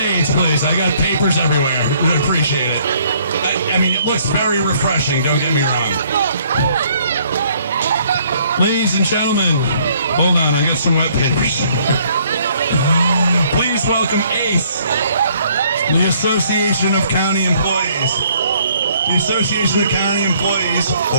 please. I got papers everywhere. I appreciate it. I mean, it looks very refreshing, don't get me wrong. Ladies and gentlemen, hold on, I got some wet papers. Please welcome ACE, the Association of County Employees. The Association of County Employees,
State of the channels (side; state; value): both; inverted; correlation -0.63